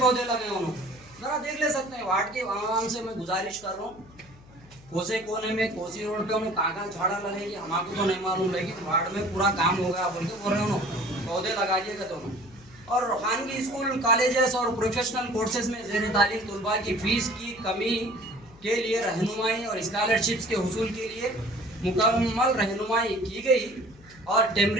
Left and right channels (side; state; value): left; noise; hum, 23 dB below the sound